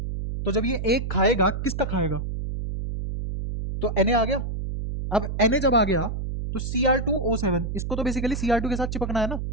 तो जब ये एक खाएगा किसका खाएगा तो Na आ गया। अब Na जब आ गया तो Cr2O7 इसको तो बेसिकली Cr2 के साथ चिपकना है ना।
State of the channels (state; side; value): noise; right; hum, 4 dB below the sound